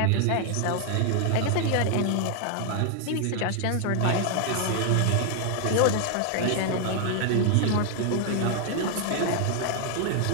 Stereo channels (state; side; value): different; both; correlation 0.00